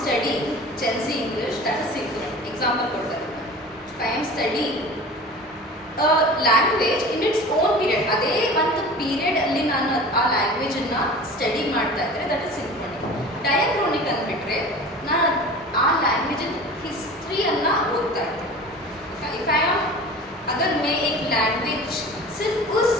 studying Gen Z English, that is synchronic. Example ಕೊಡ್ತಾರೆ. If I am studying a language in its own period, ಅದೇ ಒಂದು period ಅಲ್ಲಿ ನಾನು ಆ language ಅನ್ನ study ಮಾಡ್ತಾ ಇದ್ರೆ that is ಸಿಂಕ್ರೋನಿಕ್. ಡಯಾಕ್ರೋನಿಕ್ ಅಂದ್ಬಿಟ್ರೆ ನಾನು ಆ ಲ್ಯಾಂಗ್ವೇಜ್ ಹಿಸ್ಟ್ರಿಯನ್ನ ಓದ್ತಾ ಇದ್ದೆ. ಇಫ್ ಐ ಆಮ್ अगर मैं एक लैंग्वेज सिर्फ उस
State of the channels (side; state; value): both; normal; correlation 0.38